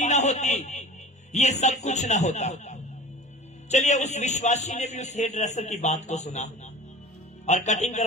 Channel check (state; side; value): normal; both; correlation 0.38